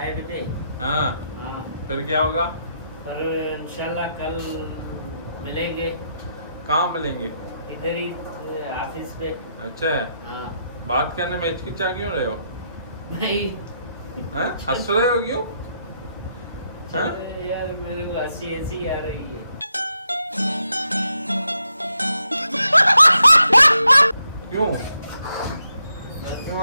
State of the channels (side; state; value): both; inverted; correlation -0.80